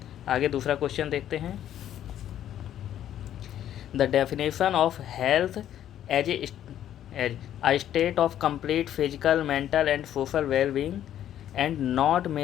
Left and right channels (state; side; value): quieter; right; 11.1 dB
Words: आगे दूसरा क्वेश्चन देखते हैं, the definition of health as a state of complete physical, mental and social well-being and not